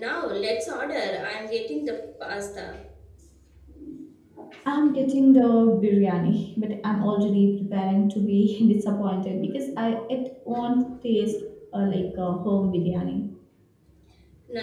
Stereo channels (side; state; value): both; identical; correlation 1.00